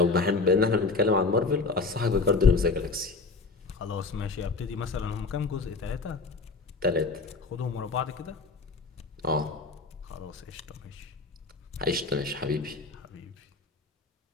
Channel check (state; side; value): quieter; right; 4.0 dB